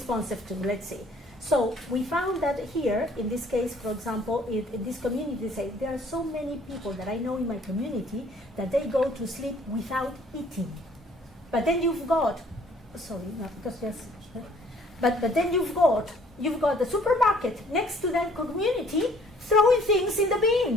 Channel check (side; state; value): both; normal; correlation 0.58